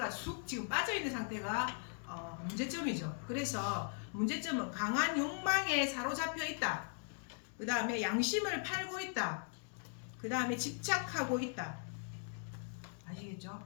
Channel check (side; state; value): right; silent; 52 dB below the other